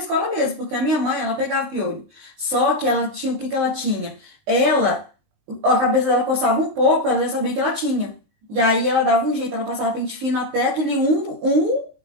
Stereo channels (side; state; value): left; late; 19 ms